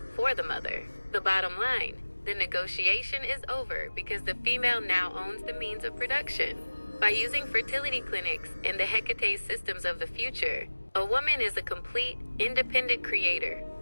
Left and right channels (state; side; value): inverted; both; correlation -1.00